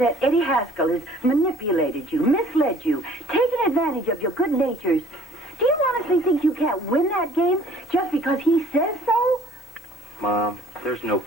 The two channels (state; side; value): normal; both; correlation 0.54